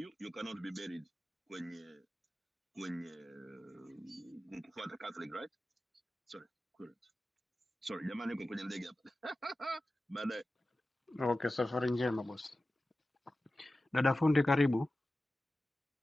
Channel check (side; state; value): both; normal; correlation 0.95